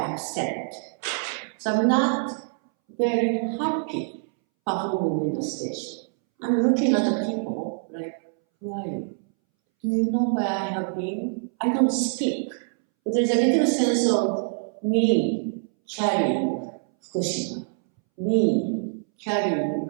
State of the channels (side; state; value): left; silent; 62 dB below the other